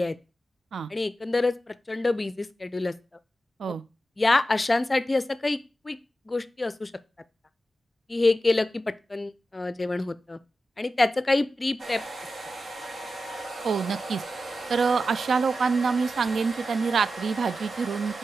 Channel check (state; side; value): normal; both; correlation 0.91